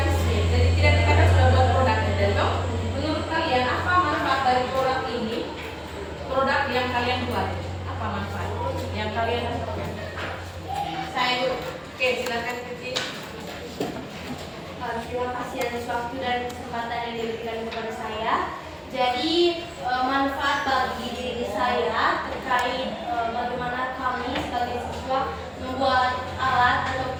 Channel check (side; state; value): both; identical; correlation 1.00